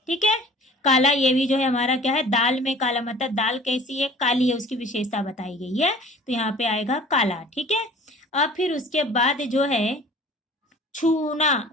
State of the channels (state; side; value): normal; both; correlation 0.47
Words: ठीक है, काला ये भी जो है हमारा क्या है, दाल में काला, मतलब दाल कैसी है, काली है, उसकी विशेषता बताई गई है, तो यहाँ पे आएगा काला। ठीक है, अब फिर उसके बाद जो है छुआ